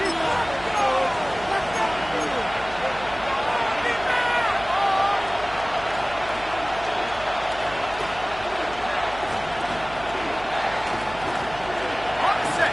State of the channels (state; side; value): noise; right; hum, 16 dB below the sound